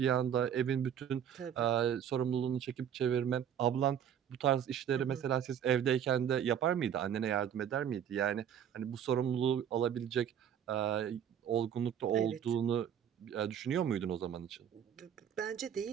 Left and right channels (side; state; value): left; quieter; 9.1 dB